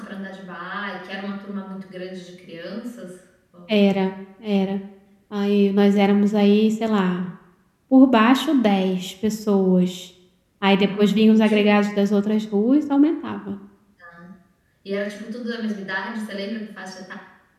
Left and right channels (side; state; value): both; identical; correlation 1.00